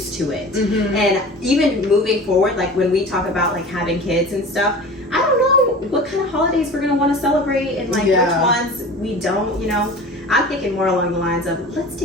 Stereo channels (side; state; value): both; normal; correlation 0.37